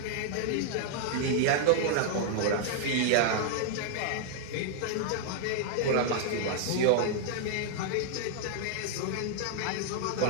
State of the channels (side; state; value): both; different; correlation -0.01